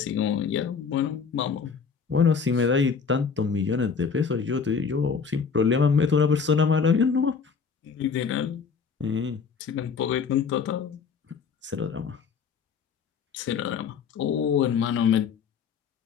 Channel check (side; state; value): right; quieter; 5.9 dB